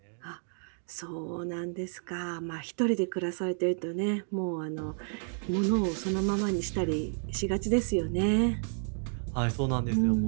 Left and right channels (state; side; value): silent; left; 57 dB below the other